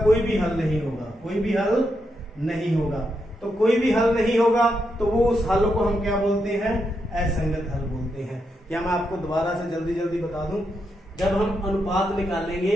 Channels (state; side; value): normal; both; correlation 0.83